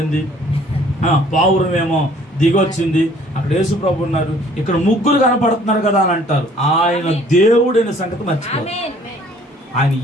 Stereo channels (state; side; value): normal; both; correlation 0.56